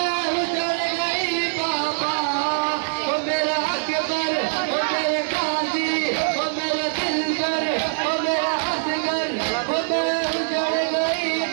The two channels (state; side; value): silent; left; digital silence